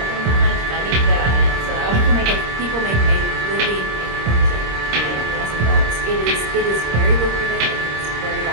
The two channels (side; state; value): left; late; 26 ms